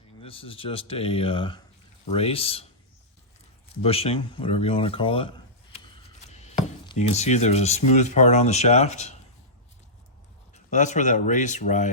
This is just a race, bushing, whatever you want to call it. You can see there's a smooth part on the shaft. Well, that's where that race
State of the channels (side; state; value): both; normal; correlation -0.15